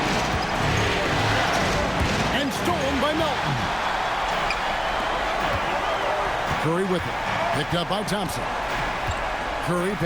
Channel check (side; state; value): both; identical; correlation 1.00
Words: And stolen by Melton. Curry with it. Picked up by Thompson. Curry